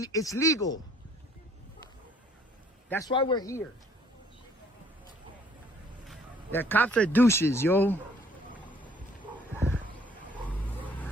legal. That's why we're here. The cops are douches, yo.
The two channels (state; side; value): normal; both; correlation 0.60